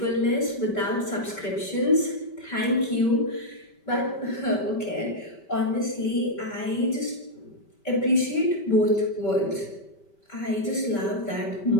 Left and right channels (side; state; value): right; late; 5.1 ms